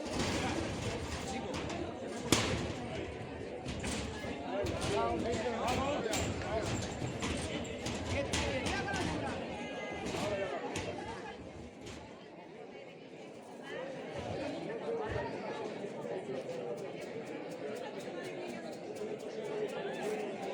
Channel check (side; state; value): both; identical; correlation 1.00